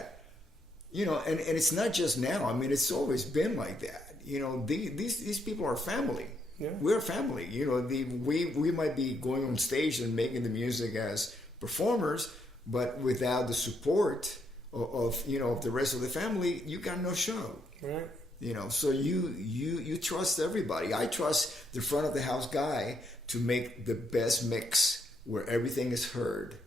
And it's not just now. I mean, it's always been like that. These people are family. We're family. We might be going on stage and making the music as performers, but without the support of the rest of the family, you got no show. Right. So you trust everybody. I trust the front of the house guy to make the best mix where everything is heard,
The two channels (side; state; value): both; normal; correlation 0.75